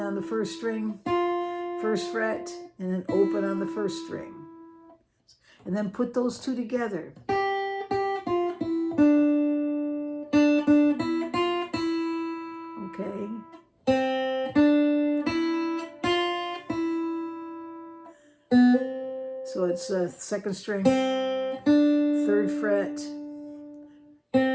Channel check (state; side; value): identical; both; correlation 1.00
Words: the first string, first fret, and then open on the first string. And then put those two together. Okay. So it's second string, third fret,